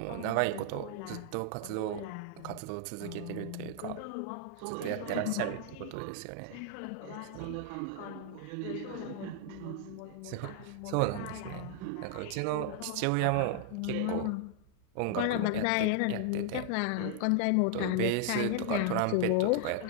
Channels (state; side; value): different; both; correlation 0.00